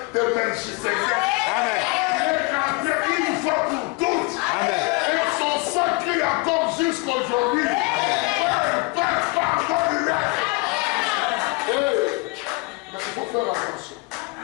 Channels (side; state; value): right; quieter; 26.8 dB